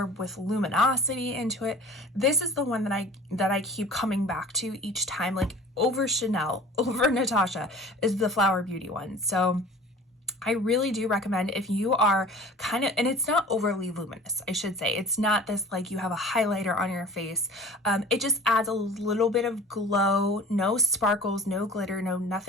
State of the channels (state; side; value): normal; both; correlation 0.43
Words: with luminosity into it. This is the one that I keep coming back to each time, like over Chanel, over Natasha, is the Flower Beauty one. So I really do recommend, if you are kind of, and it's not overly luminous, I should say. It's not this like you have a highlighter on your face. It just adds a little bit of glow, no sparkles, no glitter, no